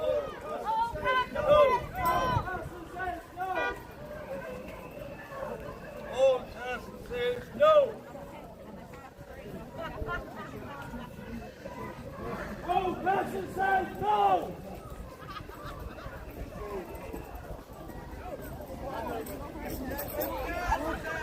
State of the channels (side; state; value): both; identical; correlation 1.00